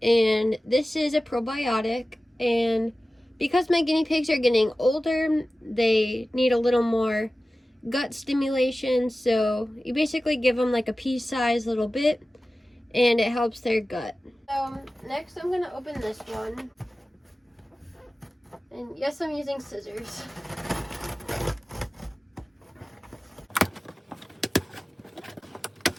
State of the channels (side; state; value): both; normal; correlation 0.96